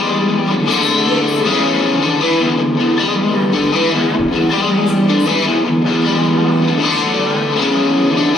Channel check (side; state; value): both; normal; correlation 0.73